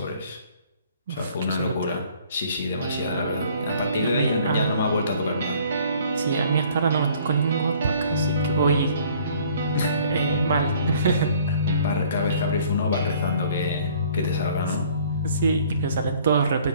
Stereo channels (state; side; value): inverted; both; correlation -0.56